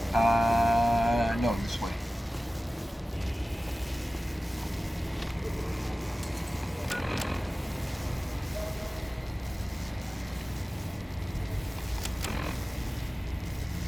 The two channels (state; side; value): normal; both; correlation 0.96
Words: No, this way.